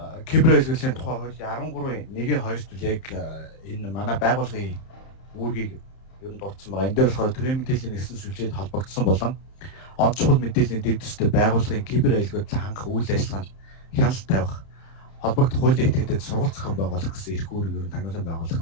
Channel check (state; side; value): late; right; 31 ms